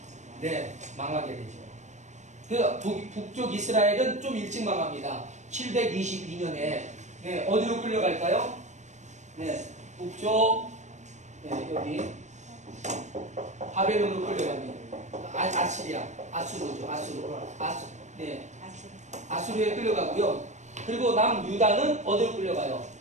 망하게 되죠. 그래서 북쪽 이스라엘은 좀 일찍 망합니다. 722년에 어디로 끌려갈까요? 북쪽 여기 바벨론으로 끌려갑니다. 아시리아, 아수르죠. 아수르에 끌려가고요. 그리고 남유다는 어디로 끌려가요?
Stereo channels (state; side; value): late; left; 0.34 ms